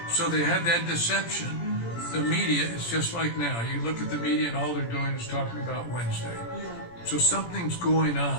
So they had that deception. The media is just like now. You look at the media and all they're doing is talking about Wednesday. So something's going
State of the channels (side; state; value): right; late; 17 ms